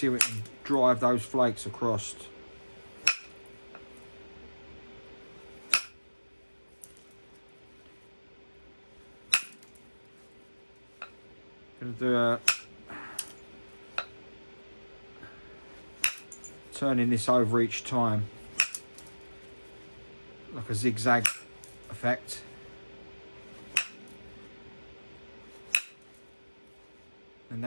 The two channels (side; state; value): both; inverted; correlation -1.00